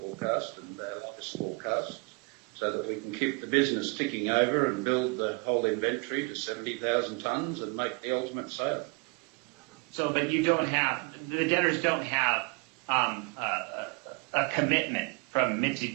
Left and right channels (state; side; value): quieter; left; 31.2 dB